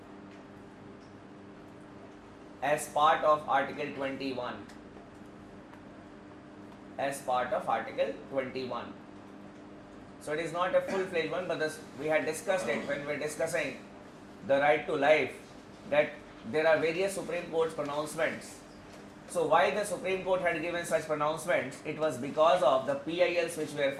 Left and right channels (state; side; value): identical; both; correlation 1.00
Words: as part of Article 21. So it is not a full-fledged one, but we had discussed it when we were discussing the right to life, that there are various Supreme Court pronouncements. So why the Supreme Court had given such pronouncements? It was because of the PILs which were